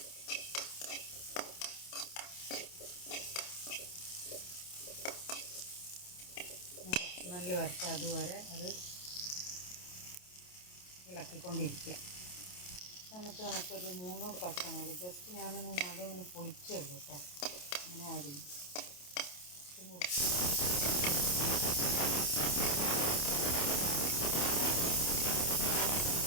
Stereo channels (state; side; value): late; right; 28 ms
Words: നല്ല വരട്ടെ, അതുവരെ അത് ഇളക്കിക്കൊണ്ടിരിക്കുക. നമുക്കൊരു 3 പച്ചമുളക് ജസ്റ്റ് ഞാനൊന്ന് നടുവിങ്ങനെ പൊളിച്ചുള്ളൂ കേട്ടോ, അങ്ങനെ ആഡ് ചെയ്യും.